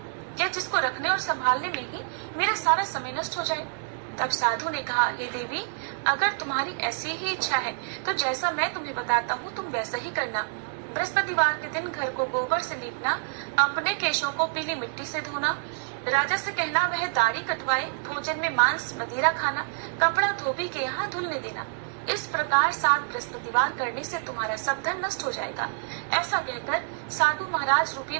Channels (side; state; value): left; silent; digital silence